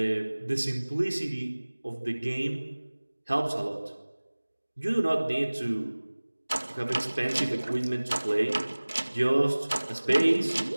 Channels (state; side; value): inverted; both; correlation -1.00